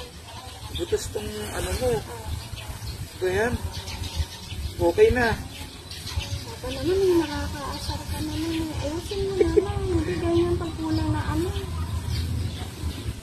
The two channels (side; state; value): both; identical; correlation 1.00